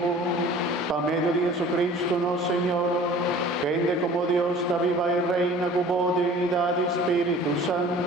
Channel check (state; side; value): normal; both; correlation 0.46